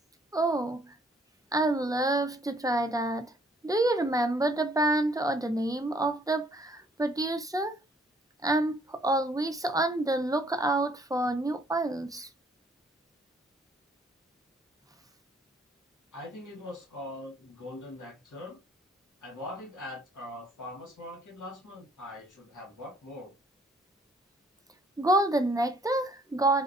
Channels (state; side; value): normal; both; correlation 0.63